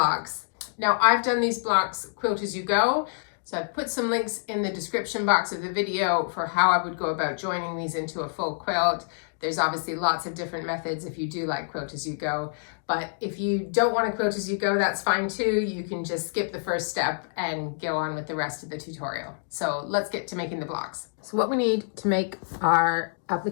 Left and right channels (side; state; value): right; silent; digital silence